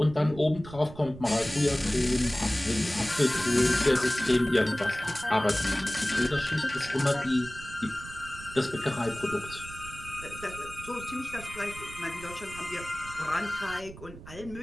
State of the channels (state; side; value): noise; right; rumble, 15 dB below the sound